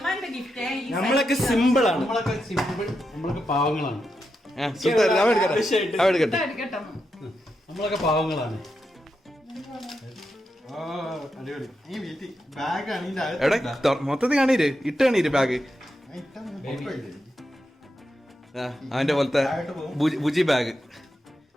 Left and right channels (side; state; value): both; normal; correlation 0.86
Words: ഗിഫ്റ്റ്. നമ്മളൊക്കെ സിമ്പിൾ ആണ്. നമ്മളൊക്കെ പാവങ്ങളാണ്. നമ്മളൊക്കെ പാവങ്ങളാണ്. എവിടെ മൊത്തത്തിൽ കാണീര് ഇട്ട് കാണീര് ബാഗ്. അവന്റെ പോലത്തെ ബുജി ബാഗ്.